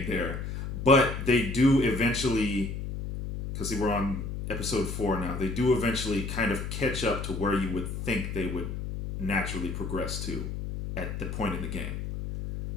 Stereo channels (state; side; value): noise; left; hum, 5 dB below the sound